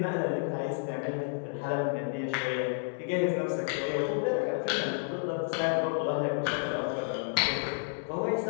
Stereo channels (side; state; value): right; silent; 57 dB below the other